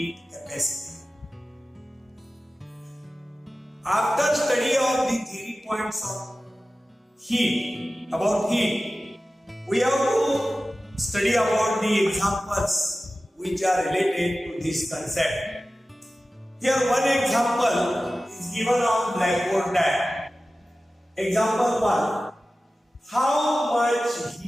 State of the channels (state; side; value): normal; both; correlation 0.95